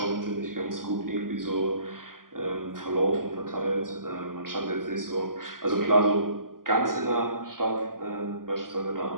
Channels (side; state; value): left; late; 0.91 ms